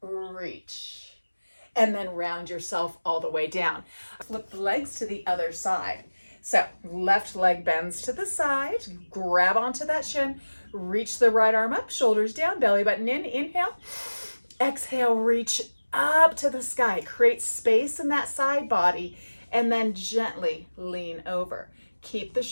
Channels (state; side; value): inverted; both; correlation -1.00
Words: reach. And then round yourself all the way down. Flip the legs to the other side. So left leg bends to the side, grab onto that shin, reach the right arm up, shoulders down, belly button in, inhale. Exhale, reach up to the sky. Create space in that side body, and then gently lean over. Keep the